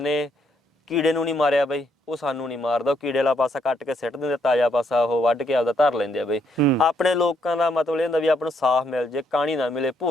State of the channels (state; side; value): normal; both; correlation 0.73